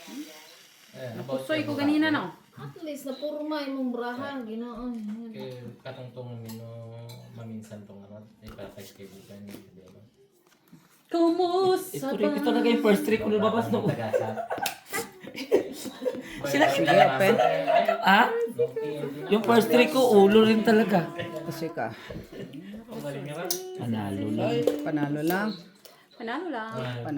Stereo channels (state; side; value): identical; both; correlation 1.00